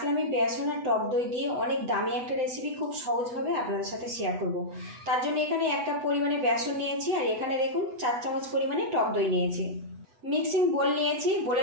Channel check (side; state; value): left; late; 8.1 ms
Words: আমি বেসন আর টক দই দিয়ে অনেক দামি একটা রেসিপি খুব সহজভাবে আপনাদের সাথে শেয়ার করব। তার জন্য এখানে 1 কাপ পরিমাণে বেসন নিয়েছি, আর এখানে দেখুন 4 চামচ পরিমাণে টক দই নিয়েছি। মিক্সিং বোল নিয়েছি,